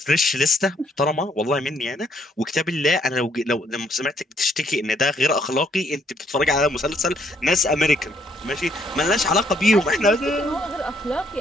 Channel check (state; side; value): normal; both; correlation 0.69